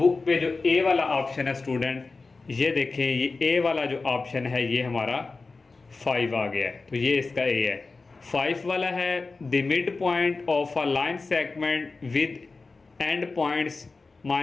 पे जो ए वाला ऑप्शन है स्टूडेंट, ये देखें ये ए वाला जो ऑप्शन है ये हमारा 5 आ गया है, तो ये इसका ए है। 5 वाला है the mid point of a line segment with and points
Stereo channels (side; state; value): right; quieter; 3.9 dB